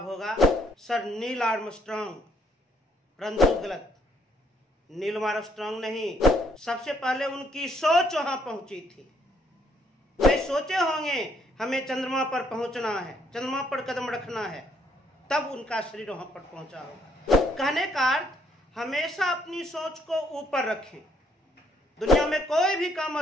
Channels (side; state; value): both; normal; correlation 0.70